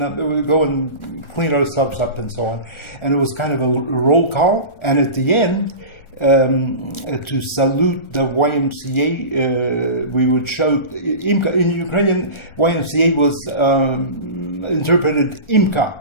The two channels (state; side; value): late; right; 1.4 ms